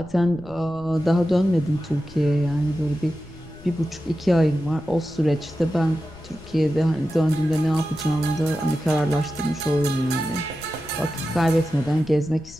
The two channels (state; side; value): noise; left; rumble, 20 dB below the sound